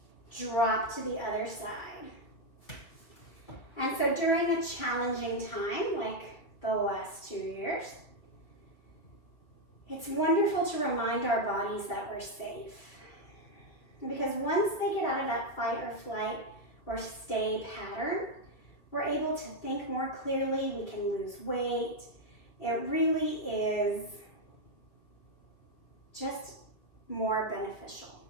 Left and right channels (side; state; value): right; late; 2.6 ms